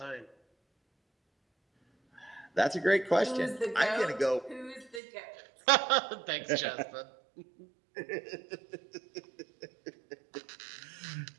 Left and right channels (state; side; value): drops out; left; at 5.0 s